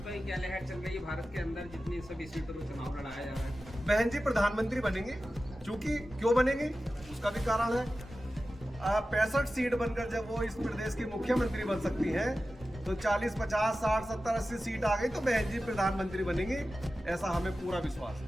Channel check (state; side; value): normal; both; correlation 0.94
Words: की क्या लहर चल रही है भारत के अंदर, जितनी सभी सीटों पर चुनाव लड़ाया जा रहा है? बहन जी प्रधानमंत्री बनेंगी, क्योंकि क्यों बनेंगी उसका भी कारण है। 65 सीट बनकर जब वो इस प्रदेश की मुख्यमंत्री बन सकती हैं, तो 40, 50, 60, 70, 80 सीट आ गई तो बहन जी प्रधानमंत्री बनेंगी, ऐसा हमें पूरा विश्वास